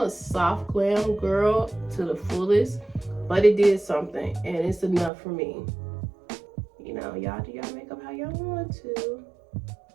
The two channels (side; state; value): left; drops out; at 5.1 s